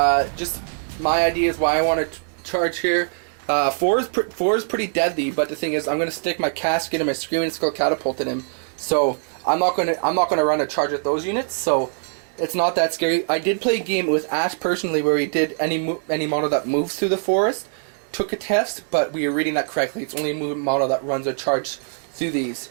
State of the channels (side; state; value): left; silent; digital silence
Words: Just my idea is why I want to charge here. 4 is pretty deadly, but the thing is, I'm going to stick my casket and my screaming skull catapult in him. So I'm not going to run a charge with those units. So it's not that scary. I did play a game with Ash personally where he did any model that moves through the forest took a test, but we were reading that correctly. It's only a movement model that runs a charge through these